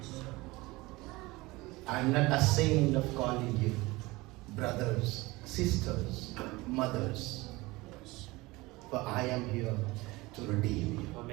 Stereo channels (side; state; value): left; quieter; 21.6 dB